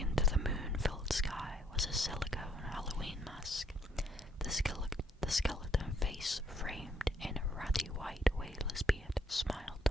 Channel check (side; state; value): both; normal; correlation 0.68